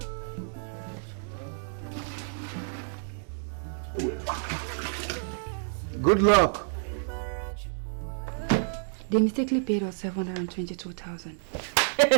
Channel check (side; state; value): left; silent; digital silence